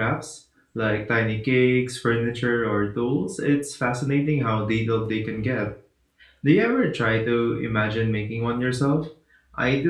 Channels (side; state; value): both; identical; correlation 1.00